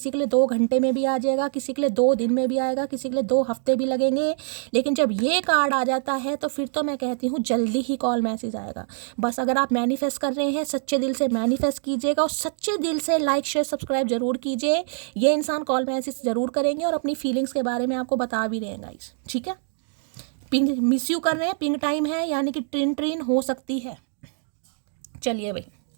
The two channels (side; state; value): left; silent; digital silence